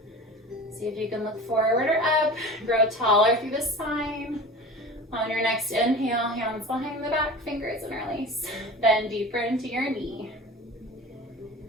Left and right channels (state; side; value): normal; both; correlation 0.35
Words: See if you can look forward or up. Grow taller through the spine. On your next inhale, hands behind the back, fingers interlace. Bend deeper into your knee.